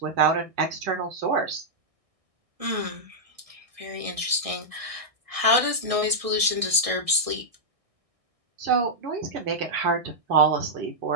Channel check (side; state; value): left; late; 1.6 ms